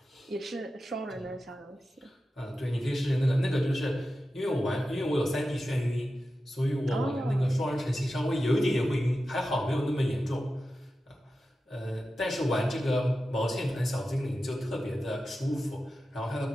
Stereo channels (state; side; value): normal; both; correlation 0.92